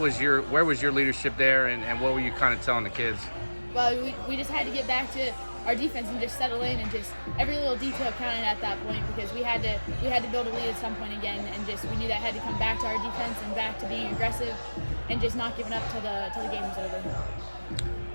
your leadership there, and what were you kind of telling the kids? Well, we just had to get back to our defense and just settle in, and just every little detail counted at that point, because we had to build a lead at some point again, and just we knew that had to come back to our defense and back to being aggressive and just not giving up till the game was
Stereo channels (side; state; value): both; inverted; correlation -1.00